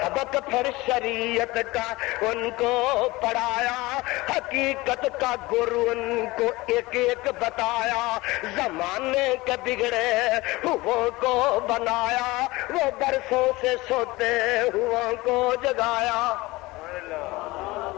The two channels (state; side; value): quieter; right; 20.9 dB